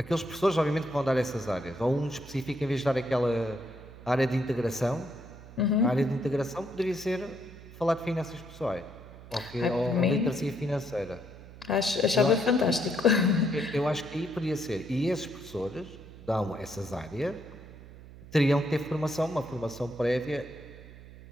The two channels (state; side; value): noise; right; hum, 17 dB below the sound